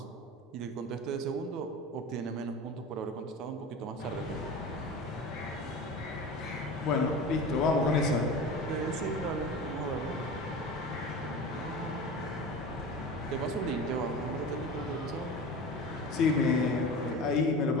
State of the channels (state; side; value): normal; both; correlation 0.32